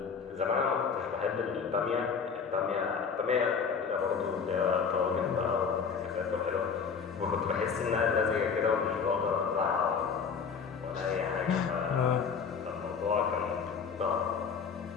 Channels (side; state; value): right; quieter; 6.0 dB